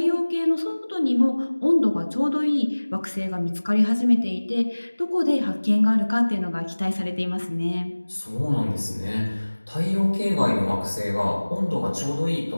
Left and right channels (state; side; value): inverted; both; correlation -1.00